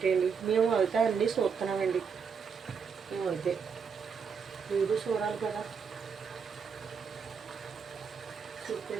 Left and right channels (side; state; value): left; quieter; 6.1 dB